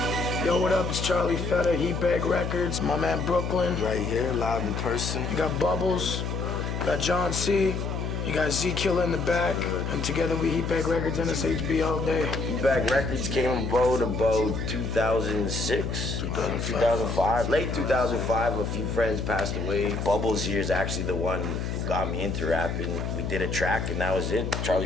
Yo, what up? It's Charlie Fettah, Heatbag Records. My man Brooklyn. Right here, live in person. You got Bubblz. You got John C. You got Z-Killa in the back. And together we Heatbag Records, NSHB all day. Heatbag Records came about 2006, 2005, late 2005. A few friends passed away. Bubblz here is actually the one who got me into rapping. We did a track and that was it.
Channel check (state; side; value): noise; left; hum, 3 dB below the sound